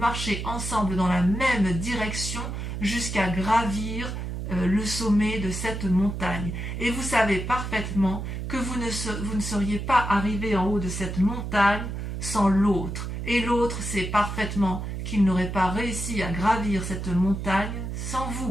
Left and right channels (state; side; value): noise; right; hum, 5 dB below the sound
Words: ensemble dans la même direction jusqu'à gravir le sommet de cette montagne. Et vous savez parfaitement que vous ne seriez pas arrivé en haut de cette montagne sans l'autre. Et l'autre sait parfaitement qu'il n'aurait pas réussi à gravir cette montagne sans